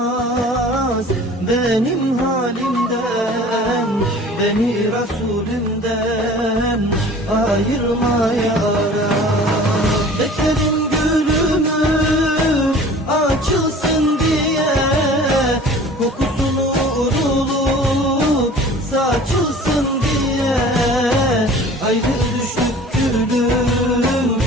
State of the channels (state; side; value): normal; both; correlation 0.45